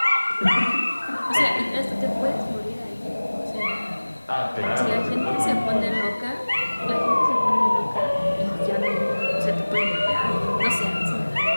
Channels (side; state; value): both; inverted; correlation -1.00